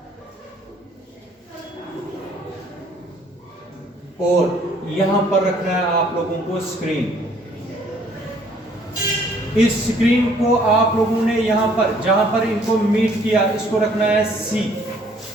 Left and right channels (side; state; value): both; normal; correlation 0.60